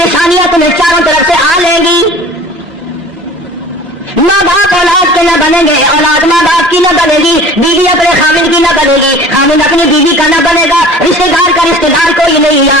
تمہیں چاروں طرف سے آ لیں گی، ماں باپ اولاد کے نہ بنیں گے، اولاد ماں باپ کی نہ بنے گی، بیوی اپنے خامد کی نہ بنے گی، خامد اپنی بیوی کا نہ بنے گا، رشتے دار کا رشتے دار کوئی نہیں،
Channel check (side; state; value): both; normal; correlation 0.44